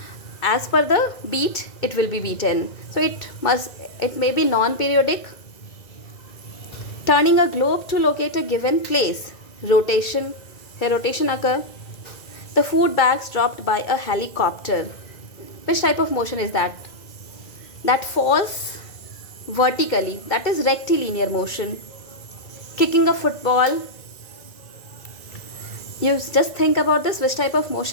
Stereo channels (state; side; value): late; right; 2.1 ms